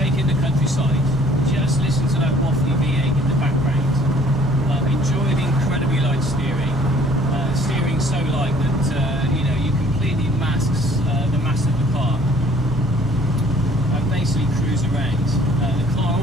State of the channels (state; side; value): normal; both; correlation 0.56